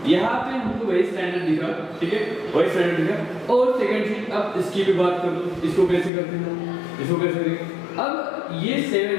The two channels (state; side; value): drops out; right; at 6.1 s